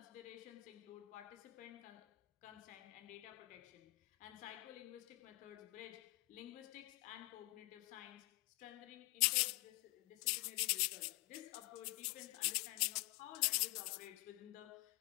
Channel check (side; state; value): right; quieter; 22.3 dB